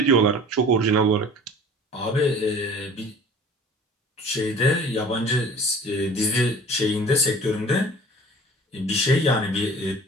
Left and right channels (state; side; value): normal; both; correlation 0.45